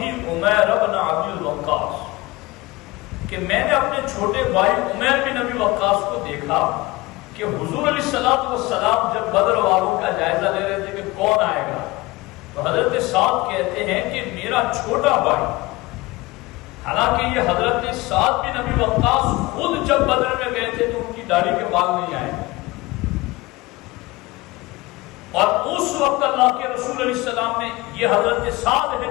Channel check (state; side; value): quieter; right; 21.3 dB